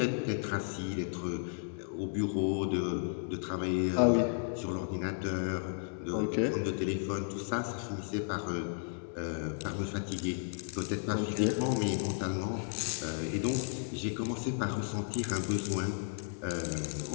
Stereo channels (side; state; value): right; silent; digital silence